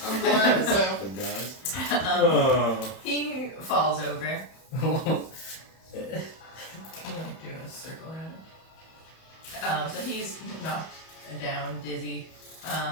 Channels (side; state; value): right; late; 31 ms